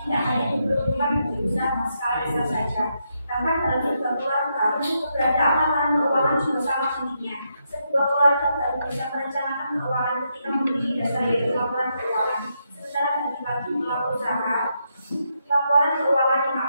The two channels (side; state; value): both; inverted; correlation -0.81